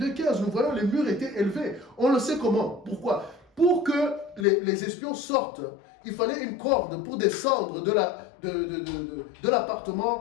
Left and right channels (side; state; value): right; drops out; at 4.5 s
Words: nous voyons les murs étaient élevés. On le sait comment. Pourquoi? Pour que les espions sortent, il fallait une corde pour descendre de